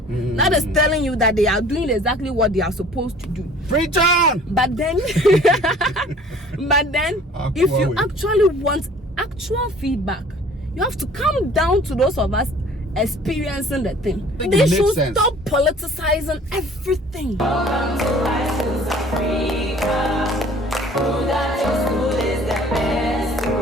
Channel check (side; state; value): both; normal; correlation 0.51